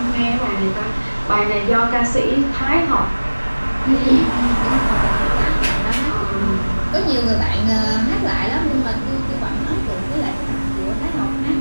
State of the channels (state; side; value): inverted; both; correlation -1.00